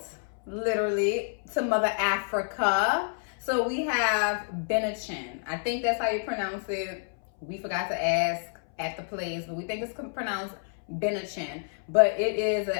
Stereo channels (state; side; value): silent; right; 59 dB below the other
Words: literally, to Mother Africa. So we have Bennachin. I think that's how you pronounce it. We forgot to ask at the place, but we think it's pronounced Bennachin. But it is an